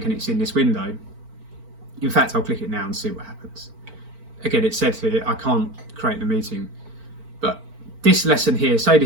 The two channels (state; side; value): late; left; 4.4 ms